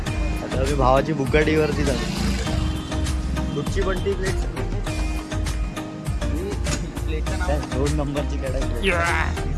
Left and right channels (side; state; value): both; identical; correlation 1.00